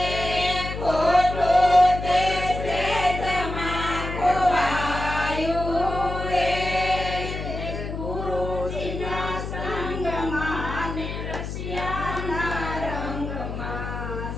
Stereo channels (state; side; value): noise; left; hum, 6 dB below the sound